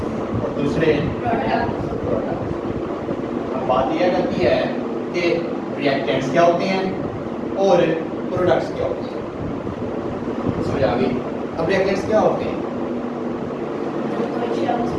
और दूसरे प्रोडक्ट। अब बात यह करती है कि रिएक्टेंट्स क्या होते हैं और प्रोडक्ट्स क्या होते हैं। समझ आ गई? अब रिएक्टेंट्स क्या होते हैं?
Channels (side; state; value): both; identical; correlation 1.00